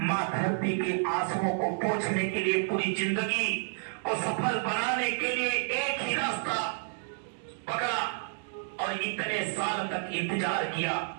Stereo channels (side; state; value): left; silent; digital silence